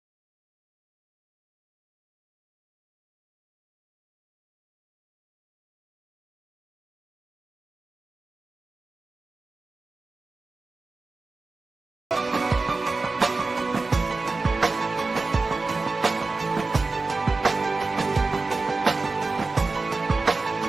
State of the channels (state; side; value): quieter; left; 3.7 dB